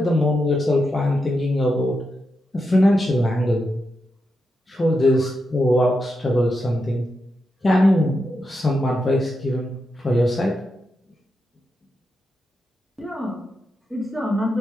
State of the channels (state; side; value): normal; both; correlation 0.86